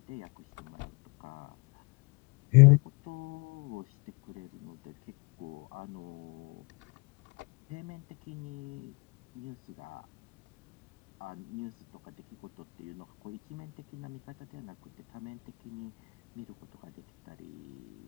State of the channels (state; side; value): quieter; right; 29.6 dB